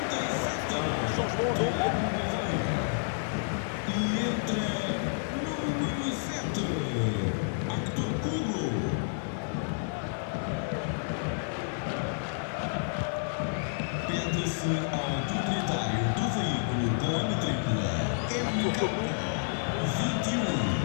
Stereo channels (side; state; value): right; silent; 58 dB below the other